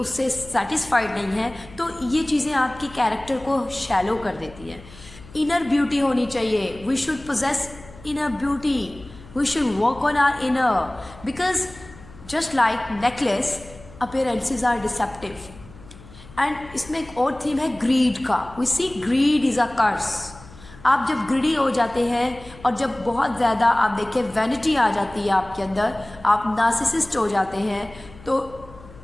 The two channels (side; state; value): left; noise; hum, 20 dB below the sound